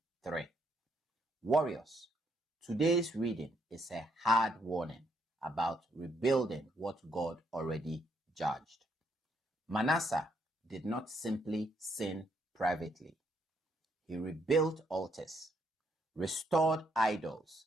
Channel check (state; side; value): normal; both; correlation 0.73